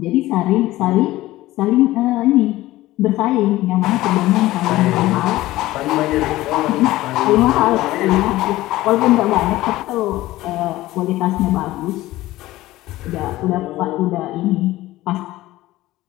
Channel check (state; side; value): quieter; right; 16.9 dB